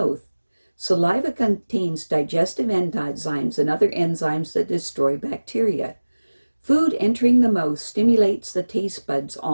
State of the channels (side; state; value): both; inverted; correlation -1.00